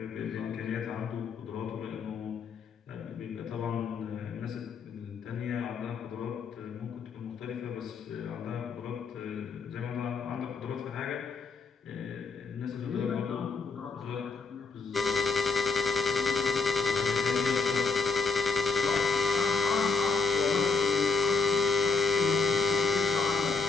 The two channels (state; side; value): quieter; right; 4.4 dB